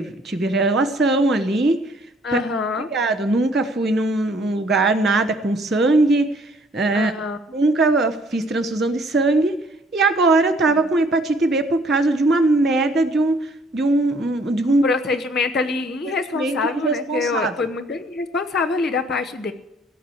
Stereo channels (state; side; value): normal; both; correlation 0.61